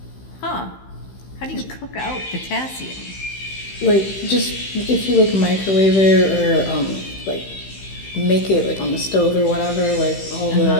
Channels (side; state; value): right; late; 15 ms